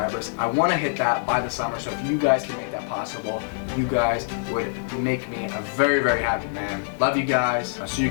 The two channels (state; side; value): silent; right; digital silence